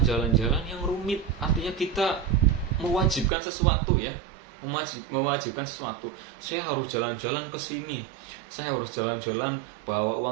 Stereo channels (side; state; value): left; drops out; at 3.3 s